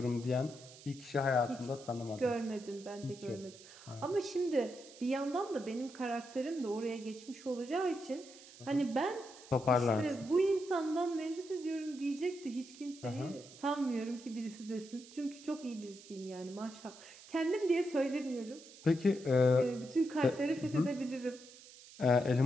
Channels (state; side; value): noise; right; hiss, 19 dB below the sound